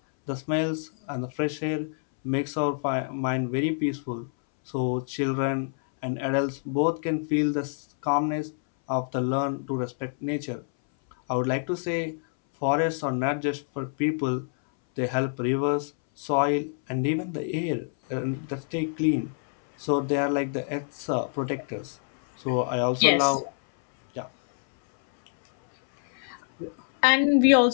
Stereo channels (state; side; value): silent; right; 61 dB below the other